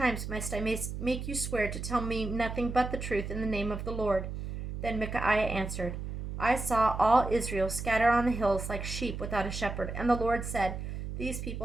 must I make you swear to tell me nothing but the truth in the name of the Lord?" Then Micaiah answered, "I saw all Israel scatter on the hills like sheep without a shepherd, and the Lord said, 'These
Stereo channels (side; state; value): right; noise; hum, 6 dB below the sound